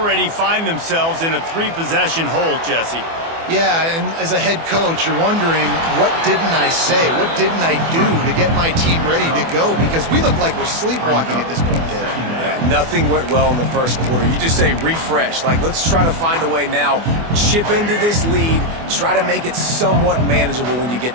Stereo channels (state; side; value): late; left; 24 ms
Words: find themselves in a 3-possession hole, Jesse. Yeah, and as a head coach, you're wondering, what didn't I say? What didn't I do to get my team ready to go? Because we look like we're sleepwalking at this point, Dave. Yeah, nothing went well in the first quarter. You just say refresh. Like, let's try to find a way now, chip into this lead, try to make it somewhat manageable when you get